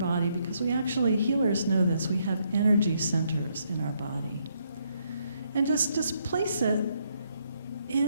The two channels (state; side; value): inverted; both; correlation -0.74